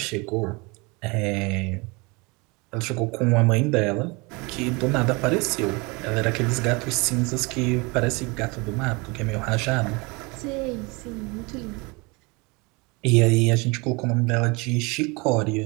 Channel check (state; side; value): quieter; left; 27.3 dB